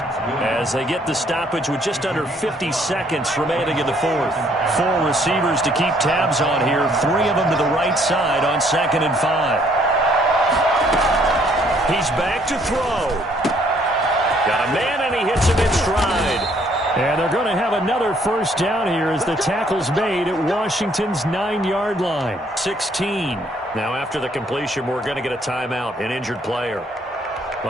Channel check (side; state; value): both; normal; correlation 0.65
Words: as they get the stoppage with just under 50 seconds remaining in the fourth. 4 receivers to keep tabs on here, 3 of them to the right side on 2nd and 5. He's back to throw. Got a man, and he hits him in stride. And they're going to have another first down here as the tackle's made at Washington's 9-yard line. 16. Now after the completion, we're going to get a timeout, an injured player.